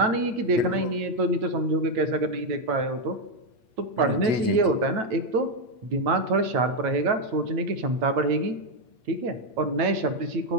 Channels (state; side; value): late; left; 8.6 ms